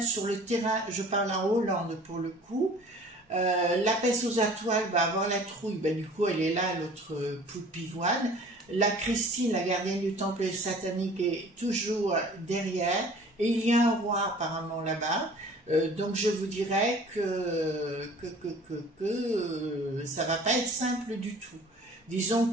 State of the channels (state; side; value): normal; both; correlation 0.48